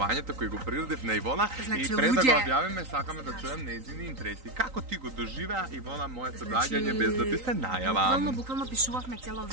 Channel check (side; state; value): left; late; 3.9 ms